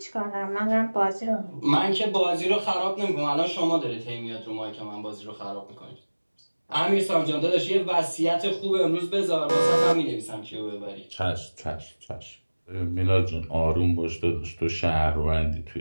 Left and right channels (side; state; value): both; inverted; correlation -1.00